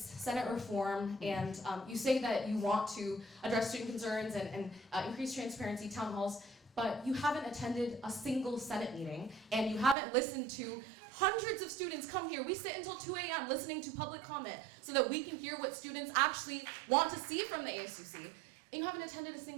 reform, and you say that you want to address student concerns and increase transparency, town halls, but you haven't attended a single Senate meeting, and you haven't listened to hundreds of students come here. We sit until 2 a.m. listening to public comment so that we can hear what students actually want to see from the ASUC. And you haven't attended a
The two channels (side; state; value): left; drops out; at 10.0 s